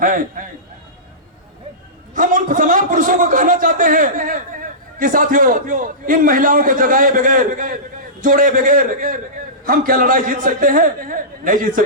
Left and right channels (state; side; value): normal; both; correlation -0.19